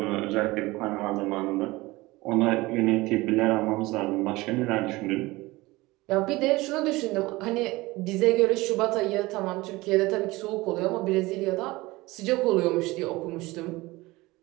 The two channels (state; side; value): quieter; left; 20.8 dB